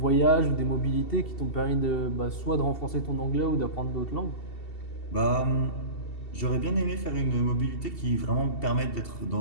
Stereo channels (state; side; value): late; right; 2.7 ms